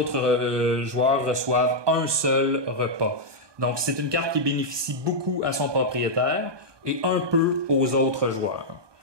joueurs reçoivent un seul repas. Donc, c'est une carte qui bénéficie beaucoup à son propriétaire et un peu aux autres joueurs.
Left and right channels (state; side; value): late; left; 1.2 ms